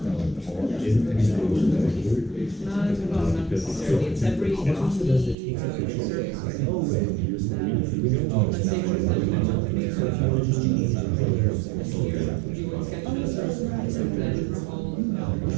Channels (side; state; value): left; drops out; at 5.4 s